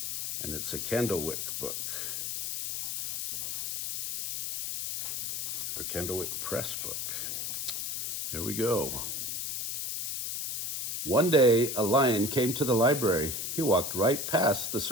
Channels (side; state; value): left; noise; hiss, 3 dB below the sound